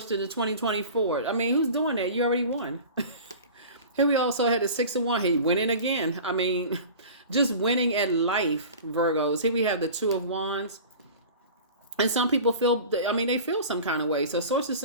into 2024? I mean, who's doing that? You already won. Here we also had the Six of Wands. He went in again. I mean, just winning at life, Virgos. Here we have the Two of Wands. And some people feel, I mean, they feel some kind of way. So Source is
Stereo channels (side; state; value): both; inverted; correlation -0.38